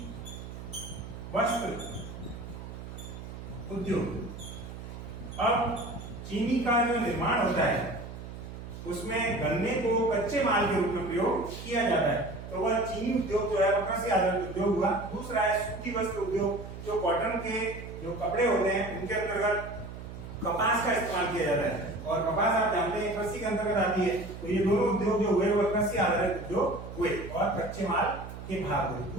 वस्त्र उद्योग। अब चीनी का जो निर्माण होता है उसमें गन्ने को कच्चे माल के रूप में प्रयोग किया जाता है, तो वह चीनी उद्योग जो है वह कृषि आधारित उद्योग हुआ। दूसरा है सूती वस्त्र उद्योग, जो कॉटन के जो कपड़े होते हैं उनके अंतर्गत कपास का इस्तेमाल किया जाता है, और कपास आप जानते हैं कृषि के अंतर्गत आती है, तो ये दोनों उद्योग जो हुए वह कृषि आधारित उद्योग हुए और कच्चे माल के भाग हुए।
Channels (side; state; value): right; noise; hum, 11 dB below the sound